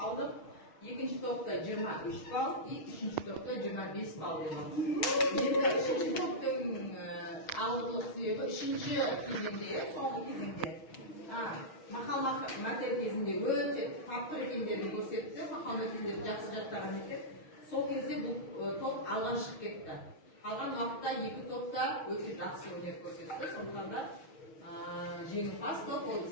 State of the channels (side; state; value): right; late; 6.4 ms